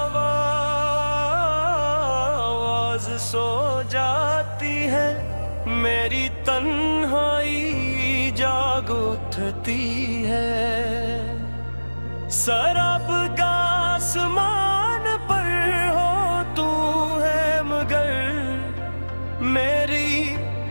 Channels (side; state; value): both; inverted; correlation -1.00